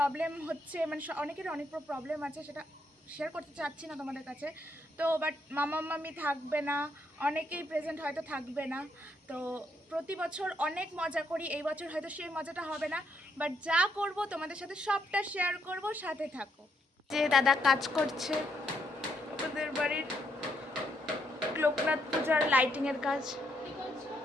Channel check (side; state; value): both; normal; correlation 0.76